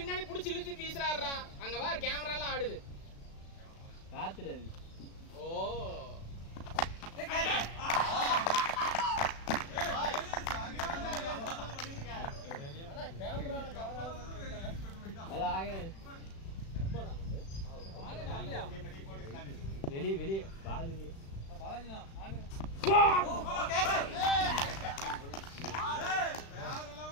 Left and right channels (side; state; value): right; late; 36 ms